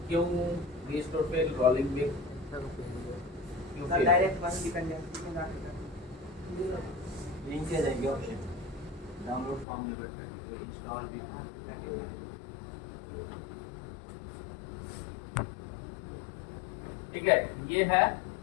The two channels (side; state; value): right; drops out; at 9.7 s